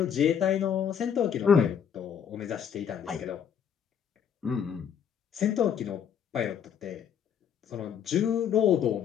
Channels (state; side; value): quieter; right; 8.2 dB